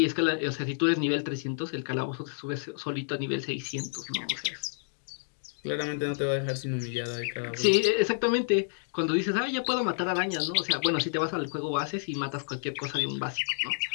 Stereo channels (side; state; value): right; silent; digital silence